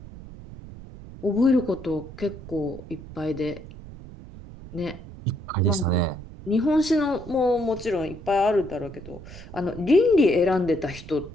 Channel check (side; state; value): right; noise; rumble, 15 dB below the sound